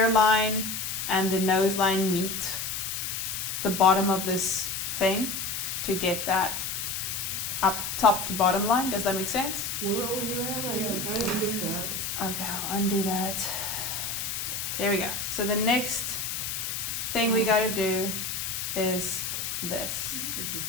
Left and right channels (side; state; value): left; noise; hiss, 3 dB below the sound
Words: and the nose line meet the bottom of this thing to get that up top to bottom line. Does that make sense? Where were you at? I didn't get that. Okay, I'll undo that. There we go. So the next thing we gotta do is this. This was